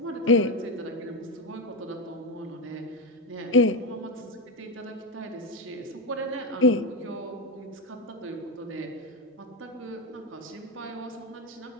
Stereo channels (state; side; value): normal; both; correlation 0.12